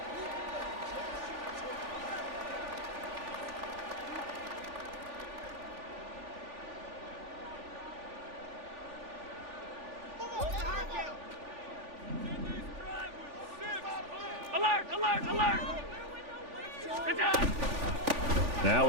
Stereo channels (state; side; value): late; left; 3.4 ms